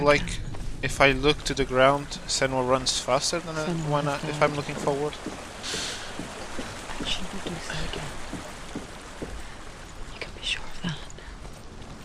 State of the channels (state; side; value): identical; both; correlation 1.00